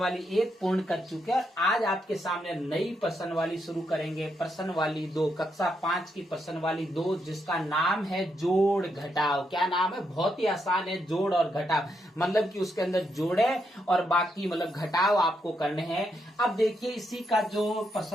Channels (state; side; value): normal; both; correlation 0.80